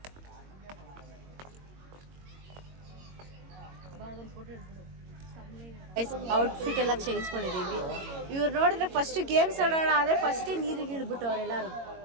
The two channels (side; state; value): left; late; 22 ms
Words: ಔಟ್ಫಿಟ್ ಎಲ್ಲ ಚೇಂಜ್ ಮಾಡಿದ್ದೀವಿ. ಇವ್ರು ನೋಡಿದ್ರೆ ಫಸ್ಟ್ ಗೇಮ್ಸ್ ಆಡೋಣ ಆದರೆ ಫಸ್ಟೇ ನೀರಿಗೆ ಇಳ್ಬಿಟ್ಟು ಅವರೆಲ್ಲರೂ.